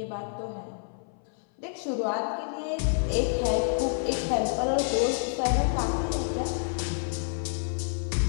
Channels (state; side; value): silent; right; 57 dB below the other